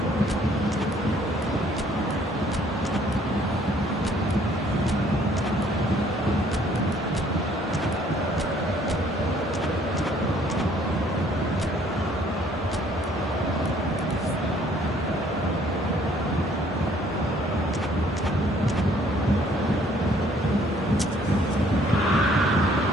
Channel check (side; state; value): both; normal; correlation 0.61